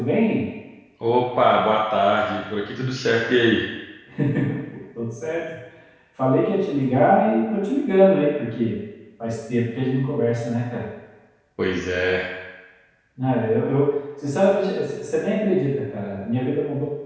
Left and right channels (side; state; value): both; identical; correlation 1.00